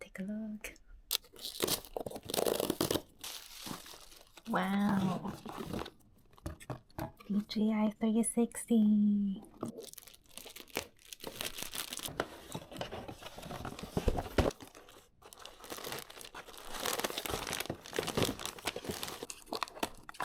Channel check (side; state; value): both; identical; correlation 1.00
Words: take a look. Wow! DJI 360!